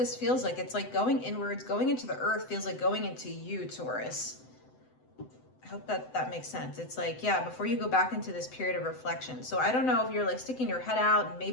feels like. It's like going inwards, going into the earth feels like going into you, Taurus. I hope that makes sense. It's like, yeah, before you go back into this period of reflection. So I don't know if you're like sticking your head out and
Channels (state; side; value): late; right; 7.9 ms